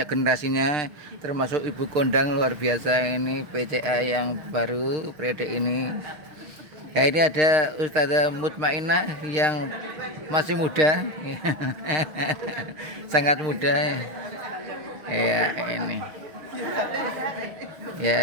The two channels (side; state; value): left; late; 6.5 ms